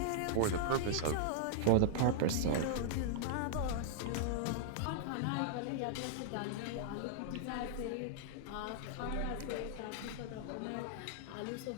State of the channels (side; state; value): both; different; correlation -0.01